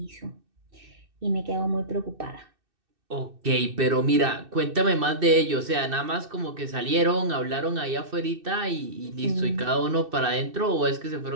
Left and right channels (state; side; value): late; left; 2.6 ms